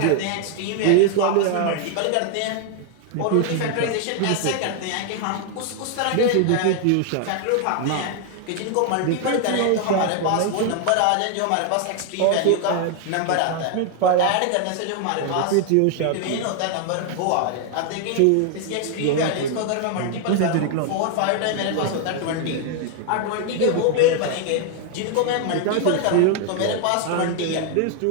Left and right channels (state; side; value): different; both; correlation 0.00